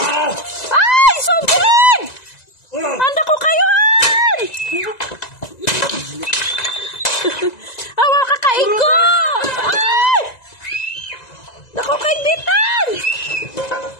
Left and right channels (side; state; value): right; late; 1.9 ms